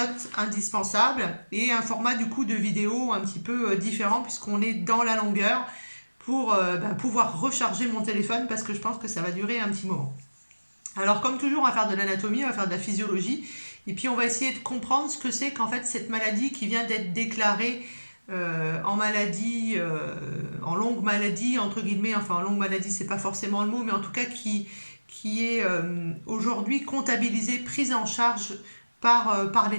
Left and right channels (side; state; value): both; inverted; correlation -1.00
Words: indispensable et un format du coup de vidéo un petit peu différent puisqu'on est dans la longueur pour pouvoir recharger mon téléphone parce que je pense que ça va durer un petit moment. Alors comme toujours, on va faire de l'anatomie, on va faire de la physiologie, et puis on va essayer de comprendre ce que c'est qu'en fait cette maladie qui vient d'être déclarée en maladie, en longue maladie, entre guillemets, enfin en longue maladie c'est pas forcément le mot, mais en tout cas qui est aujourd'hui comptabilisée, prise en charge par